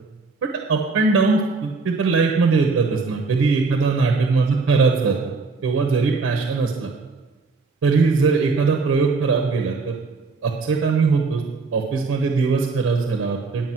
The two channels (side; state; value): left; quieter; 4.2 dB